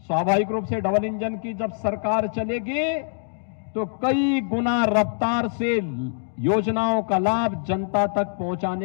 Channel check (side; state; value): right; silent; digital silence